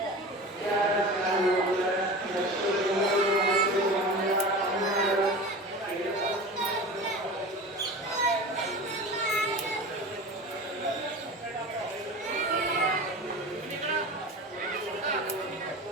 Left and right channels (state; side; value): normal; both; correlation 0.33